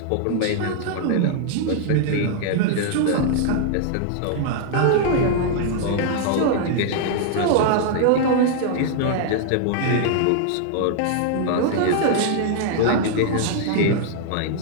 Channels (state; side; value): different; both; correlation 0.00